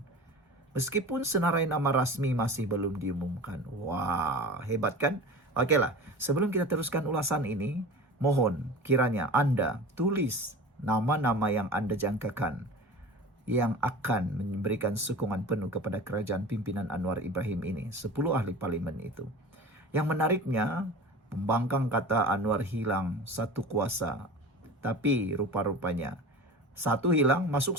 Meskipun senarai nama rasmi masih belum diumumkan. Wah, hebat kan? Okeylah, sebelum kita teruskan ulasan ini, mohon kiranya Anda tulis nama-nama yang Anda jangkakan yang akan memberikan sokongan penuh kepada kerajaan pimpinan Anwar Ibrahim ini. 10 ahli parlimen itu. Yang menariknya, pembangkang kata Anwar hilang satu kuasa. Tapi rupa-rupanya satu hilang masuk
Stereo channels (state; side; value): normal; both; correlation 0.35